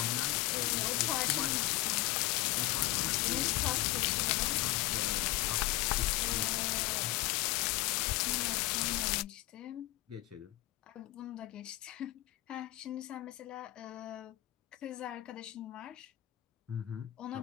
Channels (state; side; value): quieter; right; 17.5 dB